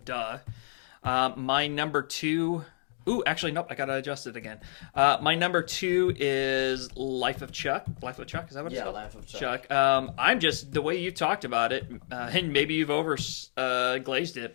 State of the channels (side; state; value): right; silent; digital silence